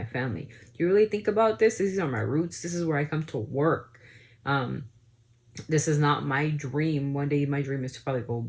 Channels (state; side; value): identical; both; correlation 1.00